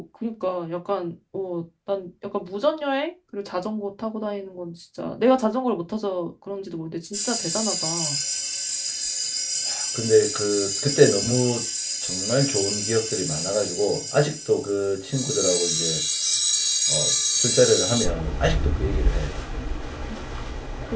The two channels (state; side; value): identical; both; correlation 1.00